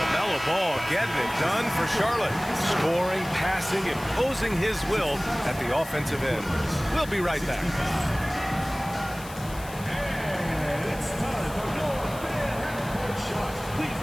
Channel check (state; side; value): noise; left; hiss, 16 dB below the sound